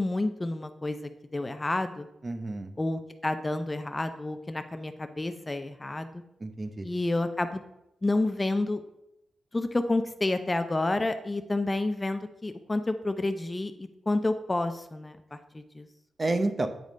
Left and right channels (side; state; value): both; normal; correlation 0.97